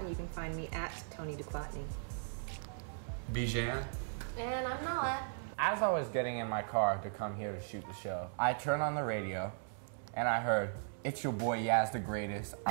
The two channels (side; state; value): left; silent; digital silence